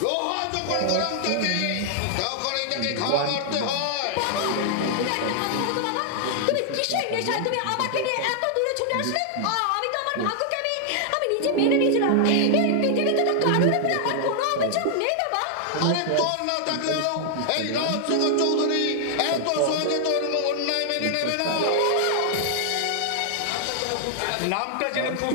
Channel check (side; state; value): both; different; correlation -0.01